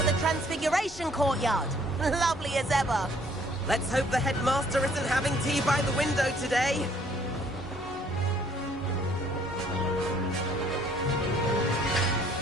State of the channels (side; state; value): both; normal; correlation 0.61